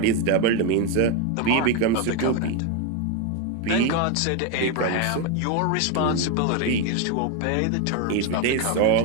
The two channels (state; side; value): different; both; correlation 0.02